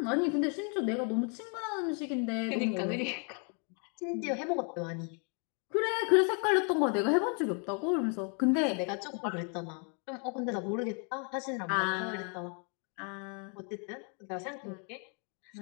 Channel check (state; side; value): quieter; right; 39.3 dB